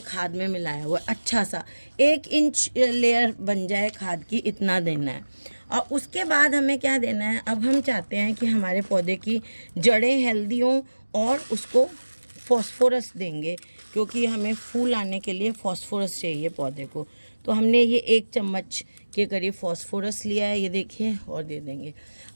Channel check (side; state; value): both; inverted; correlation -1.00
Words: खाद में मिलाया हुआ है। अच्छा सा 1 इंच लेयर बन जाए खाद की, इतना देना है। और उसके बाद हमें क्या देना है, अब हम चाहते हैं कि हमारे पौधे की जड़ें हेल्दी हों, और उसको फॉस्फोरस देंगे, क्योंकि हमें फूल आने के लिए फॉस्फोरस चाहिए पौधे को। तो हमने ये 1 चम्मच के करीब फॉस्फोरस लिया है, ये देखिए, और दे देंगे।